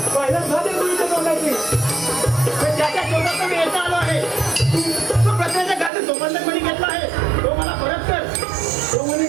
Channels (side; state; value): left; drops out; at 5.9 s